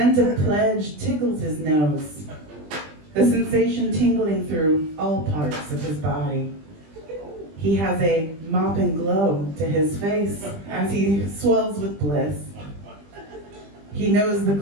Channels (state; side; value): late; left; 20 ms